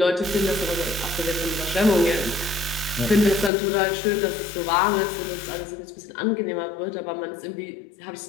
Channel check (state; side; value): drops out; right; at 3.5 s